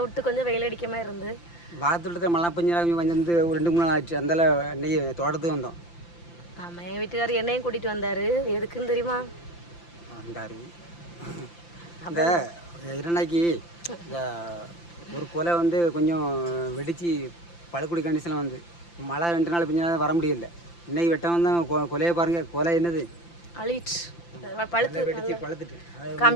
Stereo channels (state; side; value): late; right; 5.8 ms